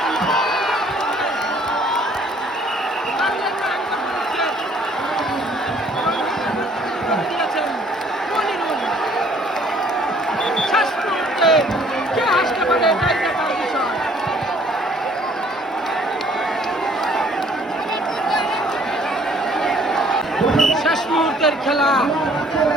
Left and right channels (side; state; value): both; normal; correlation 0.59